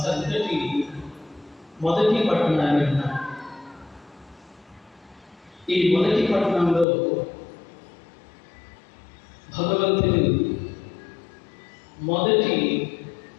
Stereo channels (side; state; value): right; drops out; at 6.9 s